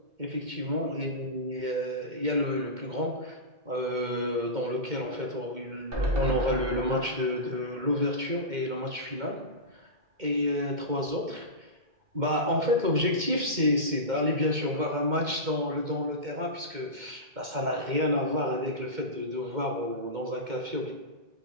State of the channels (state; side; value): late; left; 2.1 ms